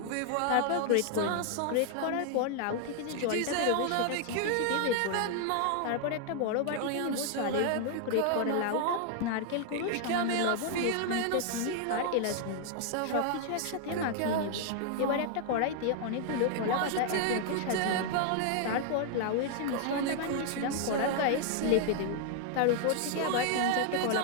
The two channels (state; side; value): different; both; correlation 0.00